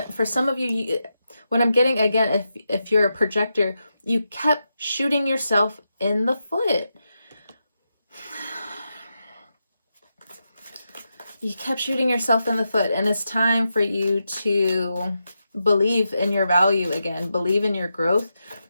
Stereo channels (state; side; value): inverted; both; correlation -0.87